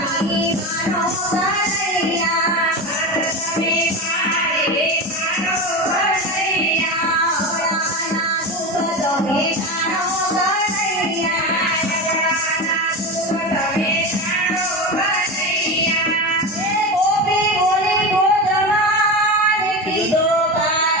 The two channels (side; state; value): both; normal; correlation 0.22